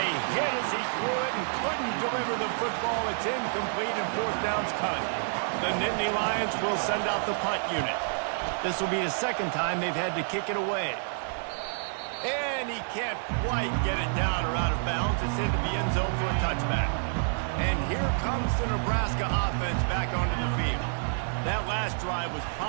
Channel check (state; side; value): silent; left; digital silence